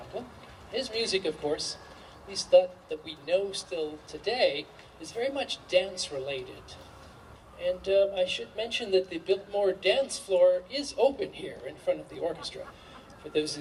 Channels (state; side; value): identical; both; correlation 1.00